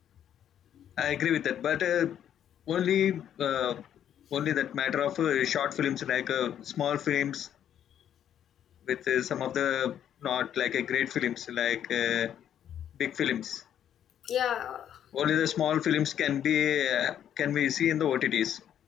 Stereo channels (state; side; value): quieter; right; 10.0 dB